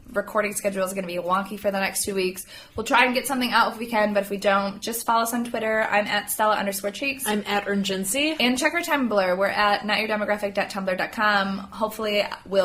recording schedule is going to be wonky for the next 2 weeks. We'll try and get something out if we can, but if we don't, just follow us on Twitter. I'm at Stella_Cheeks. I'm at Urgency. And check our Tumblr. We're at notyourdemographic.tumblr.com. Hopefully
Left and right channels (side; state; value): both; identical; correlation 1.00